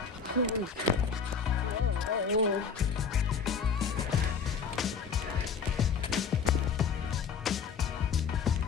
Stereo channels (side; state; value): right; quieter; 6.1 dB